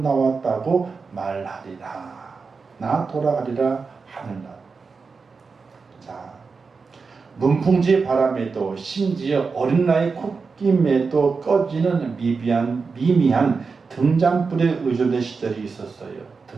말하리라. 나 돌아가리라 하늘나라. 자, 문풍지 바람에도 심지어 어린 나이 콧김에도 꺼지는 미미한 등잔불에 의존된 시절이 있었어요.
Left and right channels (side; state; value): left; quieter; 4.8 dB